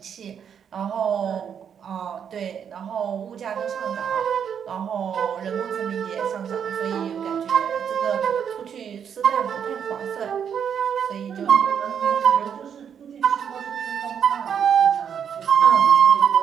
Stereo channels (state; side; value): quieter; left; 7.9 dB